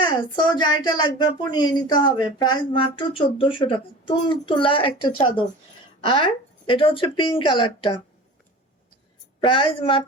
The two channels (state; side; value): normal; both; correlation 0.37